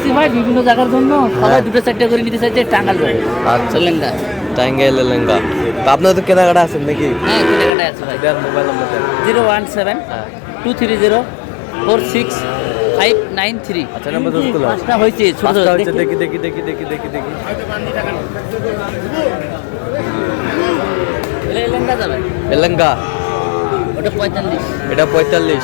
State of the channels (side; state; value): right; drops out; at 7.8 s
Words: ভাই বিভিন্ন জায়গার জন্য, সবাই 2-4টা করে নিতে চাইছে টাঙ্গাল যাবে। আচ্ছা লেহেঙ্গা। টাঙ্গাইলের লেহেঙ্গা। তো আপনার তো কেনাকাটা আছেন নাকি? হ্যাঁ কেনাকাটা আছে ভাই। দেন মোবাইল নাম্বার দেন। 017 হ্যাঁ 230 46 593। আচ্ছা নাম্বার দোস্ত গুলো পাঁচটা হয়েছে ছোট পাঁচটা ছোট হচ্ছে, দেখি। দেখি দেখি দেখি দেখি দেখি দেখি লেহেঙ্গা যাবে এলেঙ্গা ওটা 45 এটা